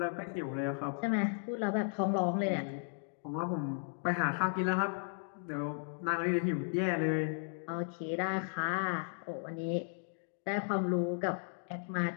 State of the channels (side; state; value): right; silent; digital silence